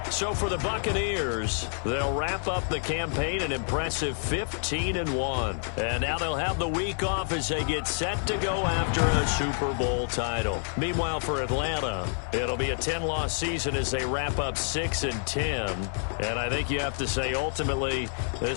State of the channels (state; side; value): silent; right; 59 dB below the other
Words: So for the Buccaneers, they'll wrap up the campaign an impressive 15-1. And now they'll have the week off as they get set to go after a Super Bowl title. Meanwhile, for Atlanta, it'll be a 10-loss season as they wrap up 6-10. And I think you have to say, ultimately,